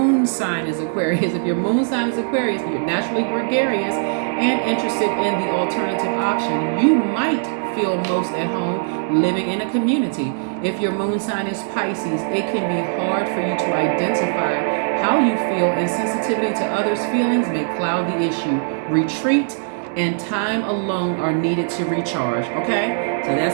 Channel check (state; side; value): silent; left; digital silence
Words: sign is Aquarius, if your moon sign is Aquarius, you're naturally gregarious and interested in the alternative option. You might feel most at home living in a community. If your moon sign is Pisces, it can be hard for you to identify how you feel, and sensitivity to others' feelings may cloud the issue. Retreat and time alone are needed to recharge. Okay, so